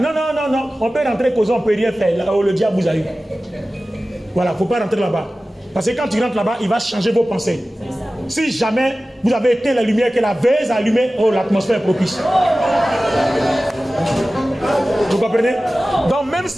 on peut rentrer causer, on ne peut rien faire. Là où le diable vous a eu. Voilà, il ne faut pas rentrer là-bas. Parce que quand tu rentres là-bas, il va changer vos pensées. Si jamais vous avez éteint la lumière que la veille a allumée, oh, l'atmosphère est propice. Vous comprenez? Donc même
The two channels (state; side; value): normal; both; correlation 0.96